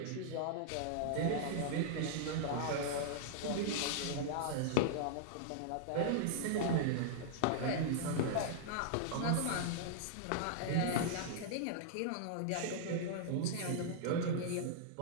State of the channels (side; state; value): both; different; correlation -0.01